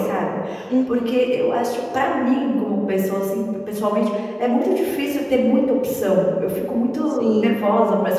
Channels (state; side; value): identical; both; correlation 1.00